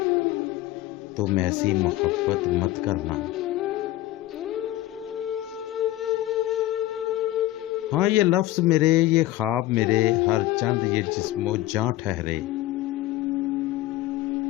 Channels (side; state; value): right; quieter; 15.6 dB